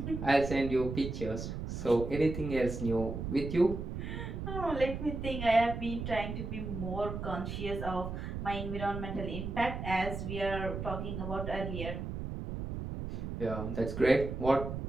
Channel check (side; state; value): right; noise; rumble, 5 dB below the sound